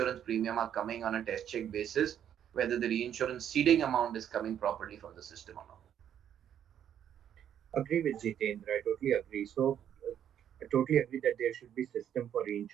premium are coming on a test check basis, whether the reinsurance ceding amount is coming properly from the system or not. Agree with Jitendra. I totally agree. I totally agree that there should be system for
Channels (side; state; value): left; quieter; 9.7 dB